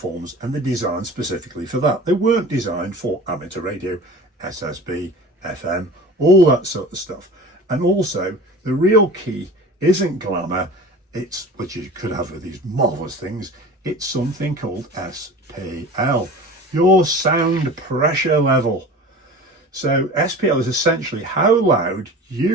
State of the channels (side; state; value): both; normal; correlation 0.38